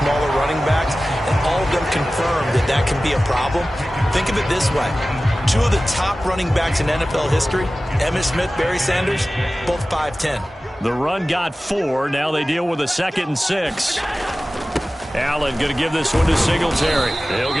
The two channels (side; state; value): both; normal; correlation 0.96